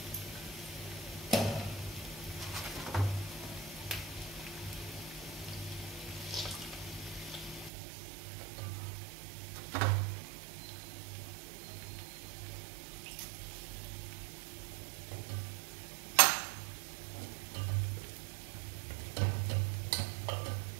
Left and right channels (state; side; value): drops out; left; at 7.7 s